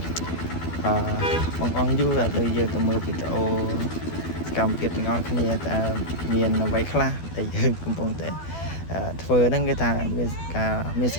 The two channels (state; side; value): late; right; 12 ms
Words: បងអង្គយូរឥឡូវយើងទៅមើលវីដេអូសកម្មភាពទាំងអស់គ្នាតើមានអ្វីខ្លះដែលយើងកំពុងតែធ្វើហ្នឹងគេថាមានស